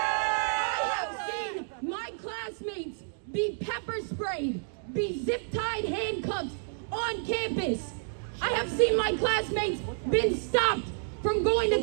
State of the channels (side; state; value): left; silent; digital silence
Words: have seen my classmates be pepper sprayed, be zip-tied handcuffed on campus. I have seen my classmates been stopped from going to